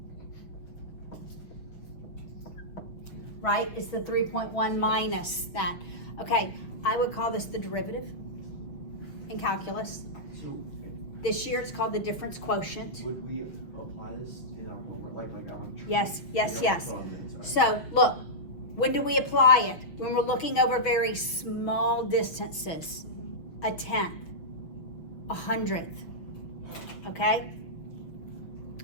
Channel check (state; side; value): late; right; 6.2 ms